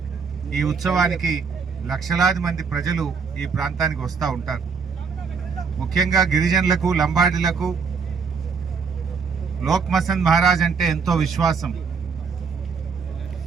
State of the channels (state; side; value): quieter; left; 5.5 dB